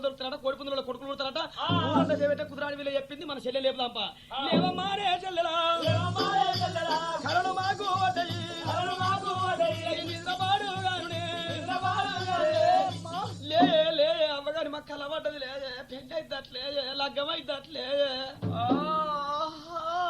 దొరుకుతారట. కోడిపుందుల కొడుకులు పుడతారట. ఊరంతా చేపెట్టే కుదురాడి వీళ్ళు చెప్పింది. మన చెల్లె లేపుదాంపా. లేవమ్మారే చెల్లెలా కరడు మాకు లే అమ్మగారి మాకు కలవడ్డది లేదే. పెళ్లి అయిద్దట్లే లగ్గం అయిద్దట్లే.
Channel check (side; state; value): both; identical; correlation 1.00